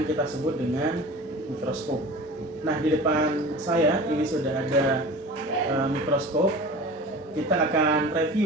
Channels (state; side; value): normal; both; correlation 0.38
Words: kita sebut dengan mikroskop. Nah, di depan saya ini sudah ada mikroskop. Kita akan